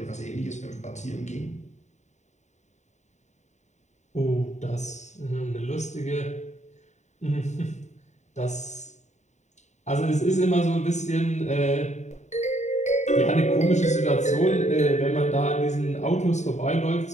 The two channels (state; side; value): late; right; 0.34 ms